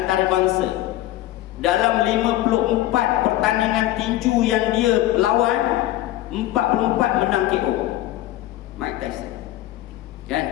Dalam 54 pertandingan tinju yang dia lawan, 44 menang KO. Mike Tyson. Kan?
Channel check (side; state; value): right; quieter; 14.9 dB